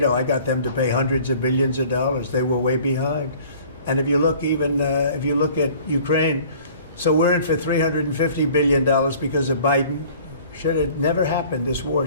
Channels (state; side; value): inverted; both; correlation -0.50